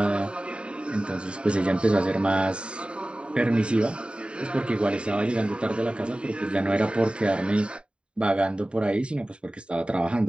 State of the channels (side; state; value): left; late; 0.054 ms